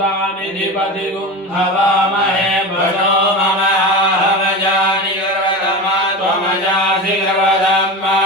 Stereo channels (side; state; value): both; normal; correlation 0.25